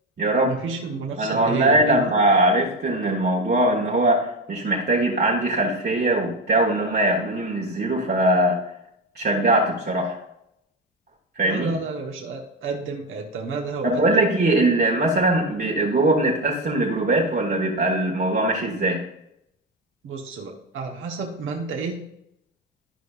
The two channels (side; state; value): both; normal; correlation 0.14